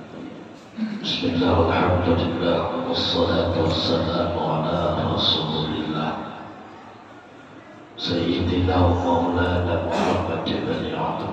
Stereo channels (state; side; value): identical; both; correlation 1.00